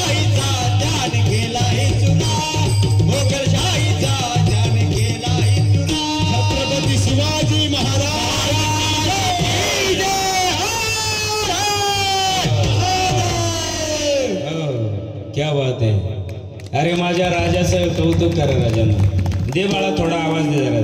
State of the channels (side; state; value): both; identical; correlation 1.00